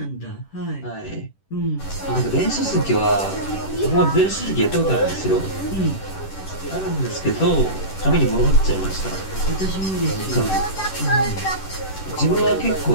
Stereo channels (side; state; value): right; late; 10 ms